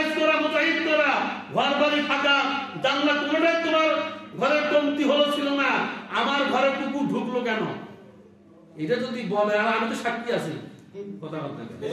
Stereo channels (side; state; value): both; identical; correlation 1.00